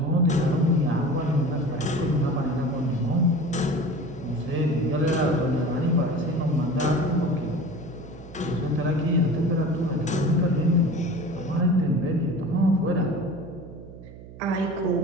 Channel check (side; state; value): right; noise; hum, 16 dB below the sound